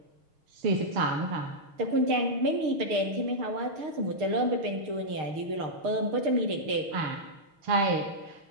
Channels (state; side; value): late; left; 6.4 ms